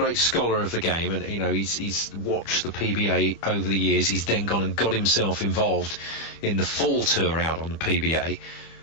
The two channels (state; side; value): late; right; 25 ms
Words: scholar of the game, and he's watched the PBA over the years. He's then gone and got himself involved in the fall tour out on the PBA,